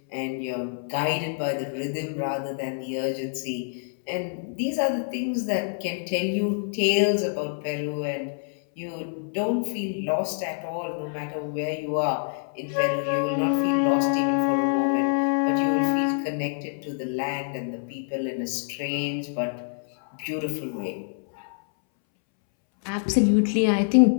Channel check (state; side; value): silent; right; 61 dB below the other